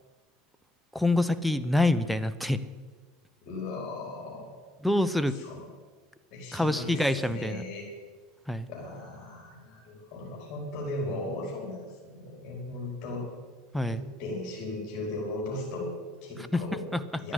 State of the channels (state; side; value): normal; both; correlation 0.75